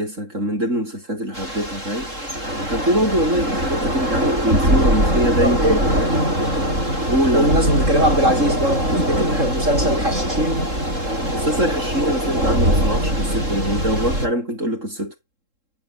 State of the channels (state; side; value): late; left; 3.7 ms